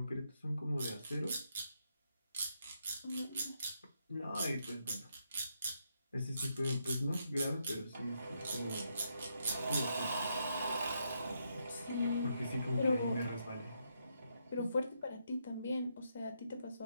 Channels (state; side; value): inverted; both; correlation -0.79